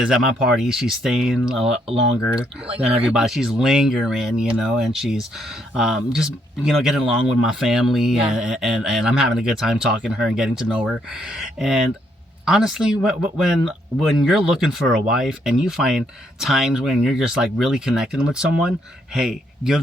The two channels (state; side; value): normal; both; correlation 0.73